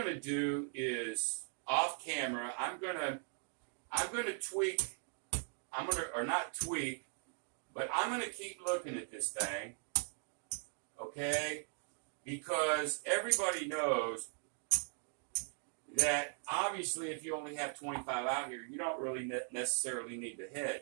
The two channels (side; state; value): left; silent; 52 dB below the other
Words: to do is, off camera, I'm going to tweak, or not tweak, but I'm going to keep looking at this thing, okay? Because everybody knows that obviously if you only have 25 out here, you don't really necessarily need to hedge.